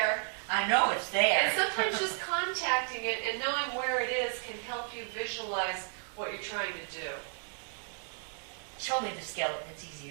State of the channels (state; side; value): silent; left; 56 dB below the other